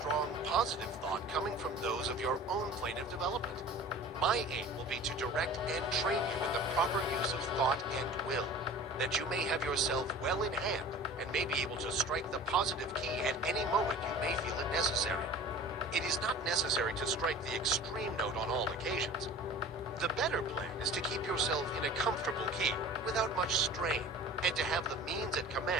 positive thought coming from those of your own plane of development. My aim will be to direct and train you in the proper use of thought and will, that you may have yourself well in hand and may be able to strike the positive key at any moment you may feel it necessary. It is not necessary to strike the extreme note on all occasions. The better plan is to keep yourself in a comfortable key without much strain, and to have the means at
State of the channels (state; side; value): normal; both; correlation 0.41